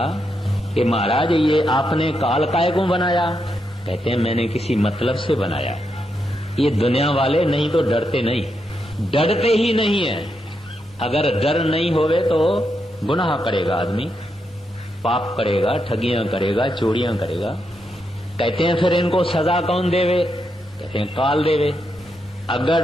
कि महाराज ये आपने काल काय को बनाया? कहते हैं मैंने किसी मतलब से बनाया। ये दुनिया वाले नहीं तो डरते नहीं, डरते ही नहीं है। अगर डर नहीं होवे तो गुनाह करेगा आदमी, पाप करेगा, ठगियां करेगा, चोरियां करेगा। कहते हैं फिर इनको सजा कौन देवे? कहते हैं काल देवे। अगर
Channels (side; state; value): both; normal; correlation 0.82